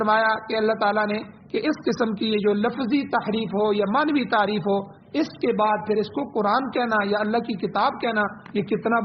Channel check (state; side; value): identical; both; correlation 1.00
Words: کہ اللہ تعالیٰ نے کہ اس قسم کی یہ جو لفظی تحریف ہو یا معنوی تعریف ہو، اس کے بعد پھر اس کو قرآن کہنا یا اللہ کی کتاب کہنا، یہ کتنا